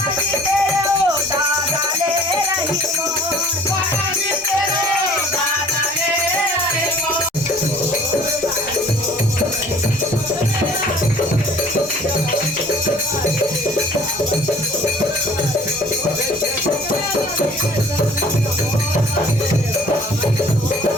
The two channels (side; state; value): both; normal; correlation 0.51